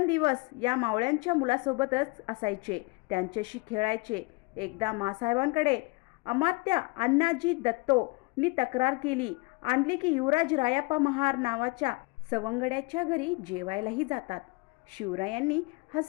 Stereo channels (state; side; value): quieter; right; 26.9 dB